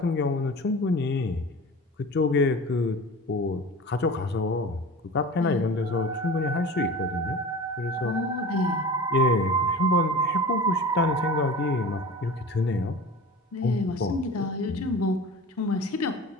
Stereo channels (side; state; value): both; normal; correlation 0.36